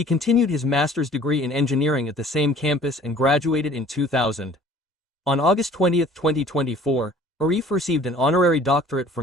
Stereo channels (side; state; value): both; normal; correlation 0.51